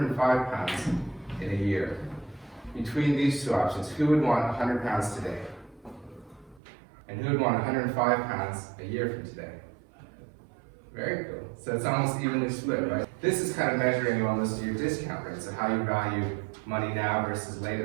pounds in a year? Between these two options, who would want 100 pounds today? And who would want 105 pounds a year from today? Very cool. So it's almost evenly split, right? This is kind of measuring almost your discount rate, so how you value money now versus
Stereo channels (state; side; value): drops out; left; at 6.6 s